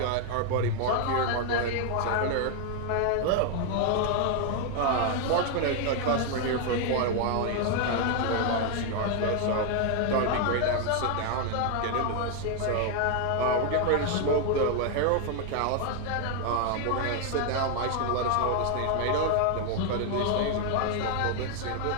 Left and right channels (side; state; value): both; different; correlation 0.00